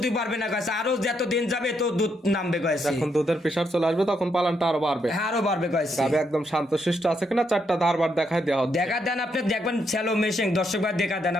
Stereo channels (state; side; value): normal; both; correlation 0.77